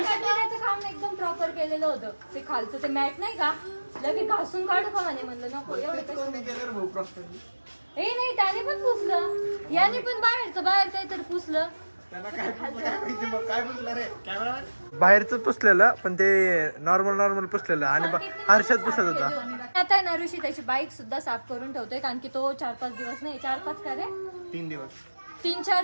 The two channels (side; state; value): both; inverted; correlation -1.00